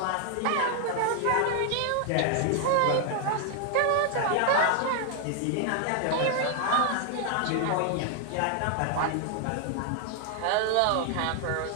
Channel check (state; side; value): different; both; correlation 0.00